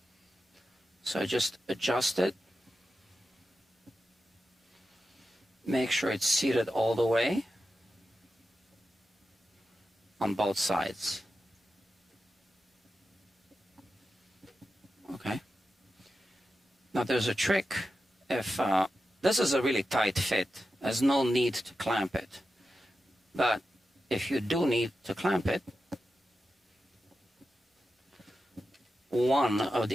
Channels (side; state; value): both; normal; correlation 0.91